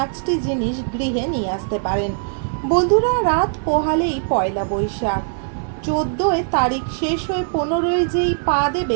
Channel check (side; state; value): left; silent; 65 dB below the other